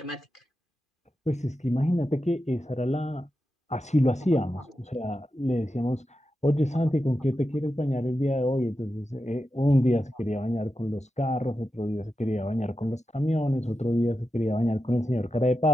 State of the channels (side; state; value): both; normal; correlation 0.90